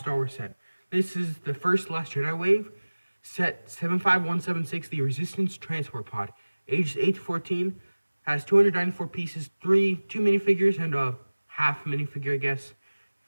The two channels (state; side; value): inverted; both; correlation -1.00